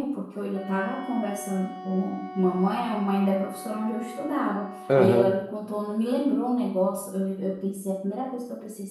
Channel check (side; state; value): both; identical; correlation 1.00